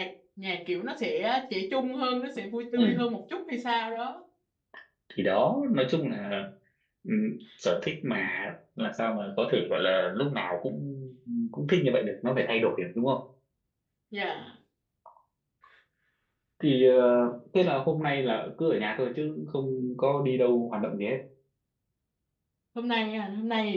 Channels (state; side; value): identical; both; correlation 1.00